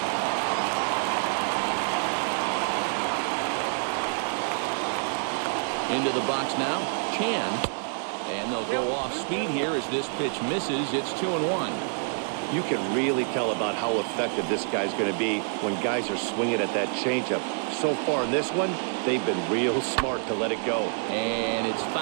Into the box now, Chan. And they'll go off speed here as this pitch misses. It's 2-1. You can really tell about how effective this guy's going to be when guys are swinging at that changeup. So far in this one, they've been real smart to let it go. And it's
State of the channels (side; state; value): left; silent; 59 dB below the other